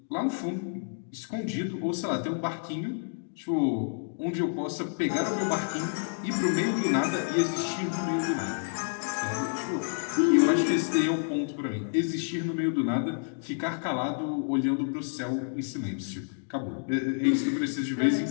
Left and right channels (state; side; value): silent; right; digital silence